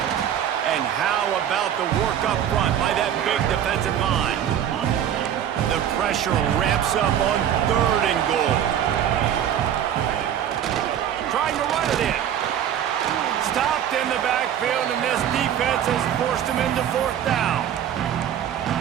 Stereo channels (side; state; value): left; quieter; 9.9 dB